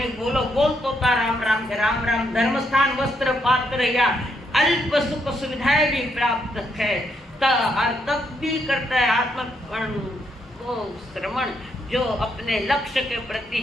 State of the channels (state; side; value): normal; both; correlation 0.77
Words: बोलो बोल तो राम राम के राम राम, धर्म स्थान वस्त्र पात्र या अल्प सुख सुविधाएं भी प्राप्त है, तब भी करता है आत्मकरण को श्रवण। जो अपने लक्ष्य के प्रति,